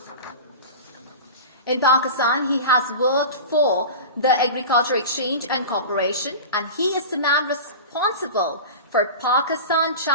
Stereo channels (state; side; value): inverted; both; correlation -0.31